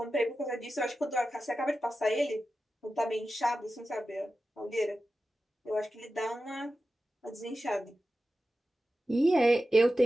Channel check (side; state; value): both; normal; correlation 0.93